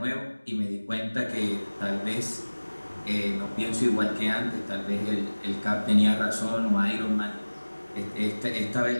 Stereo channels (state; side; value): inverted; both; correlation -1.00